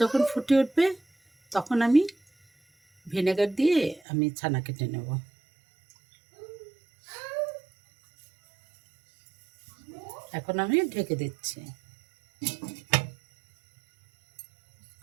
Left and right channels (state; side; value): drops out; left; at 4.0 s